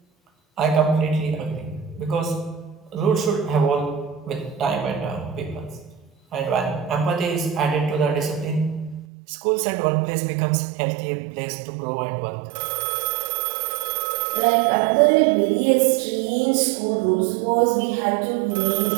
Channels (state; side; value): drops out; left; at 9.1 s